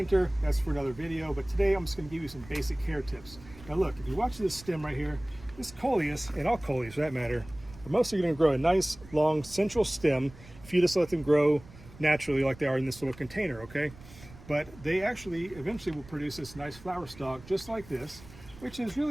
That's for another video, but today I'm just going to give you some basic care tips. Now look, if you watch this stem right here, this Coleus, and all Coleus for that matter, are mostly going to grow a nice long central stem if you just let them grow naturally like they are in this little container, okay? But they actually eventually will produce this nice flower stalk just like this, which is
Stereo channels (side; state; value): right; noise; rumble, 20 dB below the sound